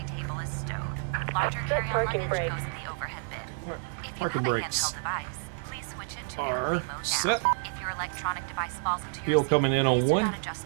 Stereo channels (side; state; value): left; silent; digital silence